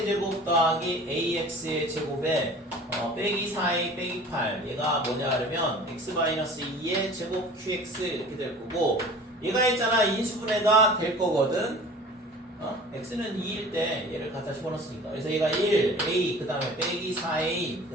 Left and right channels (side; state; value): both; normal; correlation 0.43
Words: 더하기 ax의 제곱에 빼기 4a 빼기 8 얘가 뭐냐 그러면 x-2의 제곱 qx 이렇게 될 거고 얘가 있잖아 인수분해가 될 거거든. x는 2일 때 얘를 갖다 집어넣었으니까 그래서 얘가 1, a 그 다음에 빼기 4a 그